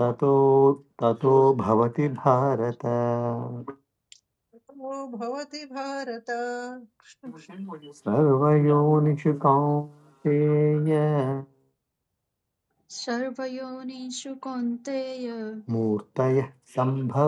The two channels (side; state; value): both; identical; correlation 1.00